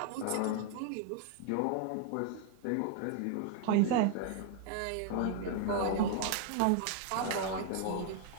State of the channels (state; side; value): different; both; correlation 0.00